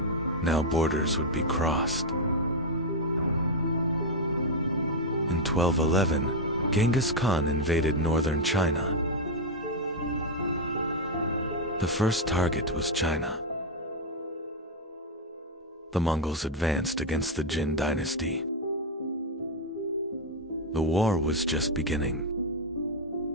Now borders would be crossed. In 1211, Genghis Khan invaded northern China. The first target was China. The Mongols advanced against the Jin dynasty. The war was just beginning.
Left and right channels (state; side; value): normal; both; correlation 0.02